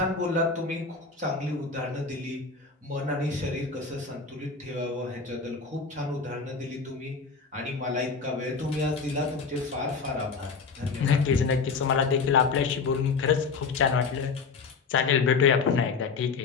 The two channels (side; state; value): right; quieter; 4.9 dB